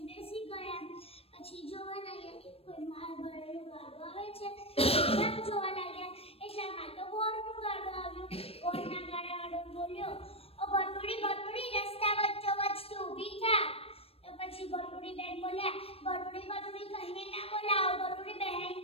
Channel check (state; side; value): late; right; 0.28 ms